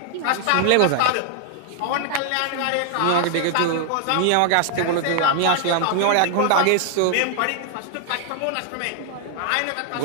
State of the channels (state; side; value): different; both; correlation 0.00